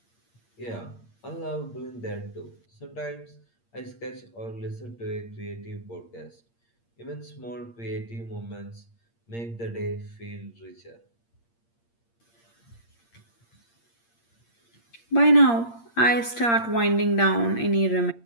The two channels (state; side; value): late; right; 8.6 ms